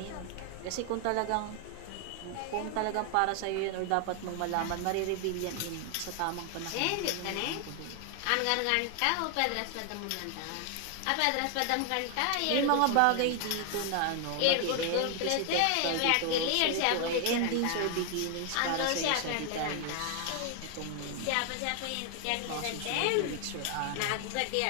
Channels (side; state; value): both; different; correlation 0.00